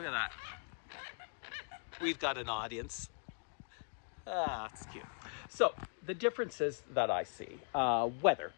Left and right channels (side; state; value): right; silent; 52 dB below the other